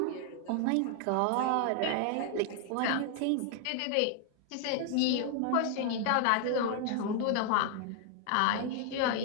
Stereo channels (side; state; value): both; different; correlation 0.00